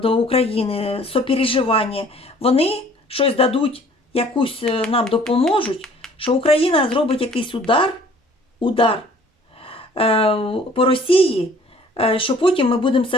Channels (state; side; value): normal; both; correlation 0.54